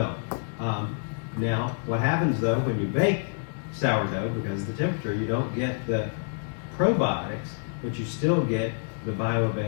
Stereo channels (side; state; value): right; silent; 60 dB below the other